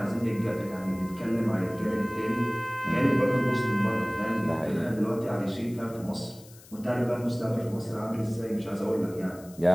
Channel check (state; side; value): noise; left; hiss, 22 dB below the sound